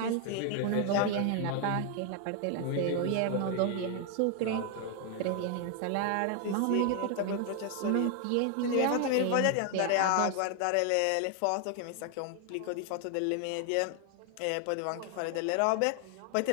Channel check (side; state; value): both; different; correlation 0.00